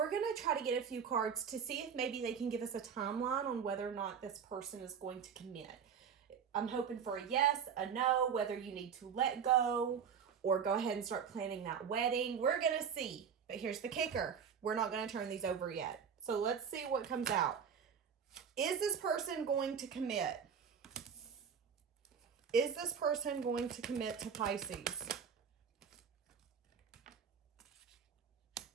going to try to get a few cards to see if maybe they can give us a timeline on whether or not this person is going to commit. I'm hoping for a yes, a no, whether you need to let go or go ahead and start planning that wedding. We're going to see. But here's the kicker. We're not going to turn these over yet. So let's see what comes out. Is this person going to commit? Is this person going to commit to Pisces?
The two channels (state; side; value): quieter; left; 7.1 dB